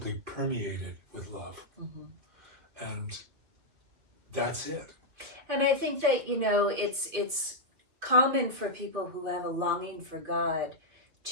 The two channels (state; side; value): late; left; 2.8 ms